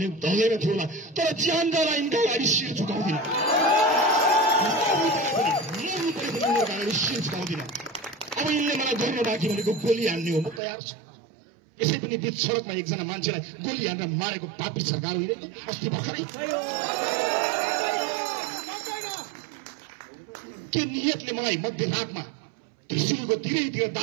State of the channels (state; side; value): drops out; left; at 10.6 s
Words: थियो होला। तर ज्यानका यिनका अगाडि शिर झुकाउँदिन, शिर झुकाउँदिन। अब यिनले मलाई गर्न बाँकी भनेको गोली हान्ने हो, म तयार छु। यसै पनि बीच सडकमा एकजना मान्छेलाई गोली हानेर मारेको पापी सरकार होइन अस्ति भर्खरै? के नियतले मलाई मध्यरातमा त्रिशुलको तिरैतिर